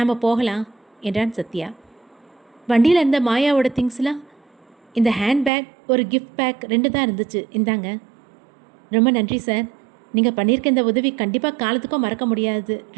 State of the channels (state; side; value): drops out; left; at 5.5 s